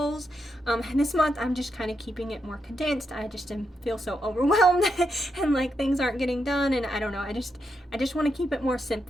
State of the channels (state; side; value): normal; both; correlation 0.83